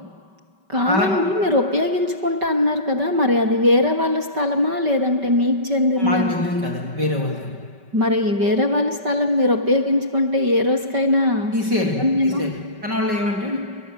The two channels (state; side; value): late; left; 5.2 ms